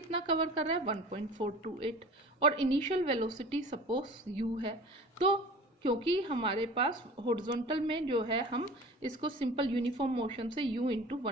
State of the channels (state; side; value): normal; both; correlation 0.40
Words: कवर कर रहा है? 1.428 और इनिशियल वेलोसिटी सपोज u है। तो क्योंकि हमारे पास हॉरिजॉन्टल में जो है हम इसको सिंपल यूनिफॉर्म मोशन से u इंटू